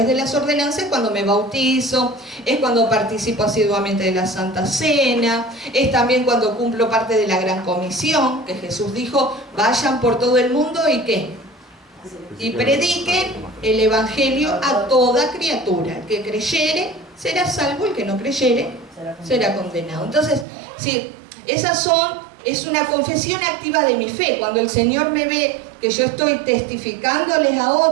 de las ordenanzas es cuando me bautizo, es cuando participo asiduamente de la Santa Cena, es también cuando cumplo parte de la Gran Comisión, que Jesús dijo, vayan por todo el mundo y ¿qué? Y prediquen el Evangelio a toda criatura. El que creyere será salvo, el que no creyere será condenado. Entonces, sí, es una confesión activa de mi fe. Cuando el Señor me ve que yo estoy testificándoles a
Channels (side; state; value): left; drops out; at 20.5 s